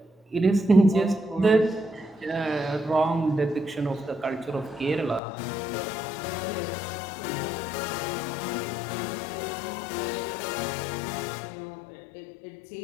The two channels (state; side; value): drops out; right; at 5.2 s